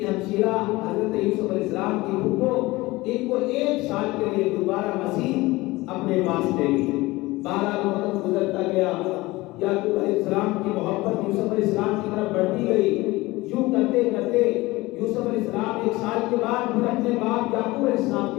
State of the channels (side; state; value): right; quieter; 20.5 dB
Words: ہمشیرہ حضرت یوسف علیہ السلام کی پھپھو ان کو 1 سال کے لیے دوبارہ مزید اپنے پاس لے گئی۔ 12 وقت گزرتا گیا، یعقوب علیہ السلام کی محبت یوسف علیہ السلام کی طرف بڑھتی گئی۔ یوں کرتے کرتے یوسف علیہ السلام 1 سال کے بعد پھر اپنے باپ یعقوب علیہ السلام